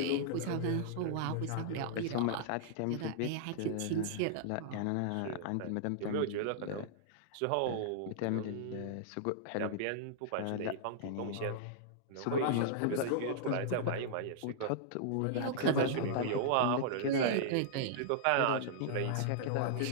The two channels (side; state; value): both; different; correlation -0.02